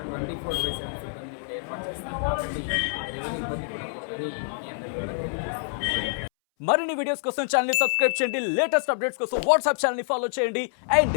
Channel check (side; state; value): right; silent; 60 dB below the other